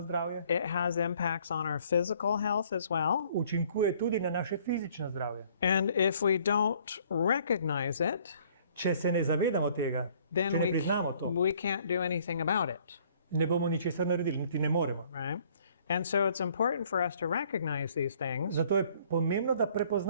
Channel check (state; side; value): inverted; both; correlation -0.59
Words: zdravje, It has impacts on our physical health as well. učinkuje tudi na naše fizično zdravje. And if we don't recognize it, Če se ne zavedamo tega, then če ne priznamo to, we can't do anything about it, ne bomo ničesar naredili, niti ne moremo. right? And so it's important for us to recognize these things. Zato je pomembno, da